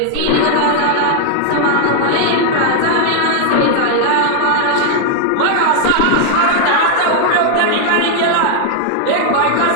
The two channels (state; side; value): different; both; correlation 0.00